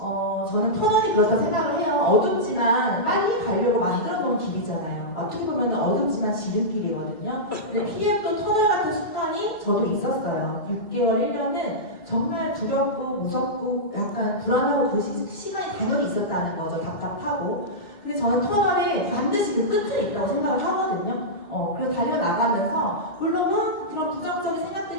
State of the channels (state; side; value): late; right; 2.1 ms